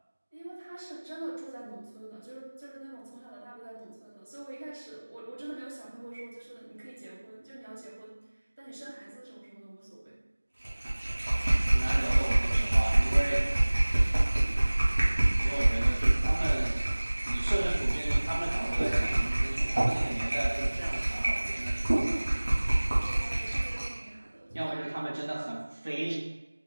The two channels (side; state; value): both; inverted; correlation -1.00